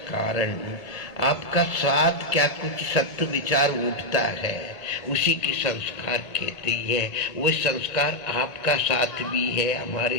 कारण आपका साथ क्या कुछ सत्य विचार उठता है, उसी की संस्कार कहते हैं। वो संस्कार आपका साथ भी है, हमारे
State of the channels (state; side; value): late; right; 2.2 ms